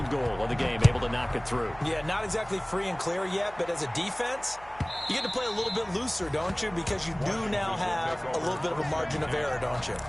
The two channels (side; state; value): right; noise; hum, 21 dB below the sound